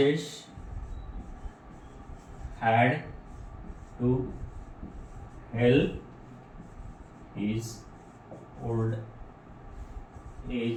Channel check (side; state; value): both; identical; correlation 1.00